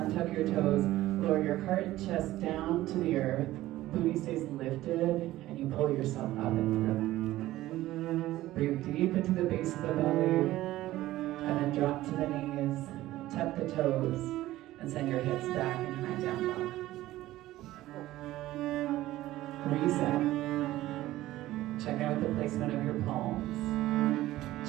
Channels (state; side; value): quieter; left; 15.8 dB